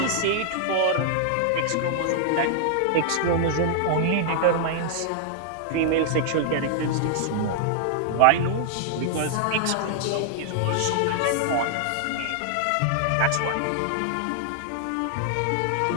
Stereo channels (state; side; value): different; both; correlation -0.01